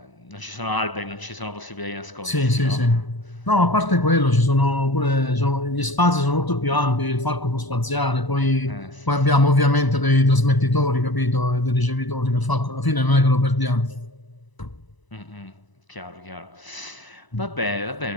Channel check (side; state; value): right; late; 1.0 ms